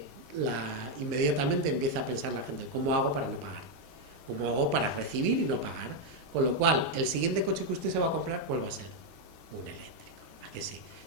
inmediatamente empieza a pensar la gente, ¿cómo hago para no pagar? ¿Cómo hago para recibir y no pagar? Con lo cual, el siguiente coche que usted se va a comprar, ¿cuál va a ser? Un eléctrico. ¿A que sí?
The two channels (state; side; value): normal; both; correlation 0.01